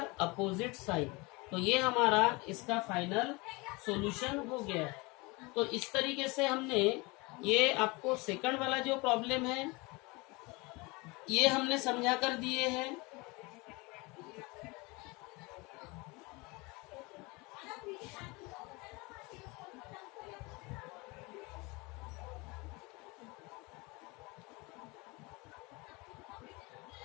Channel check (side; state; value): right; quieter; 25.7 dB